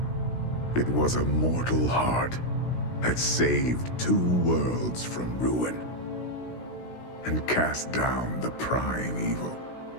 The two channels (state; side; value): late; right; 16 ms